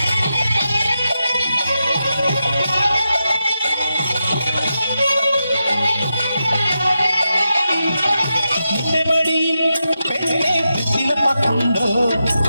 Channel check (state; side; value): inverted; both; correlation -0.88